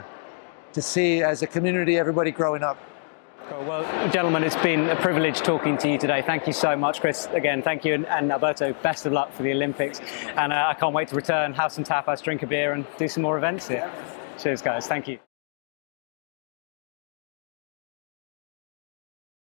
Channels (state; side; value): silent; right; digital silence